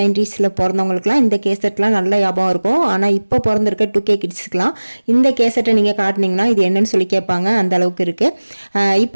பிறந்தவங்களுக்குலாம் இந்த கேசட்லாம் நல்ல ஞாபகம் இருக்கும். ஆனால் இப்போ பிறந்திருக்க 2K கிட்ஸுக்கெலாம் இந்த கேசட்டை நீங்கள் காட்டினீங்கன்னா இது என்னன்னு சொல்லி கேட்பாங்க, அந்த அளவுக்கு இருக்குது.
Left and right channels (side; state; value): both; inverted; correlation -1.00